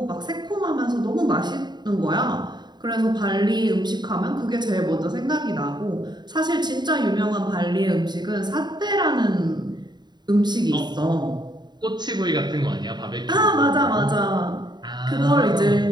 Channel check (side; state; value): left; late; 0.21 ms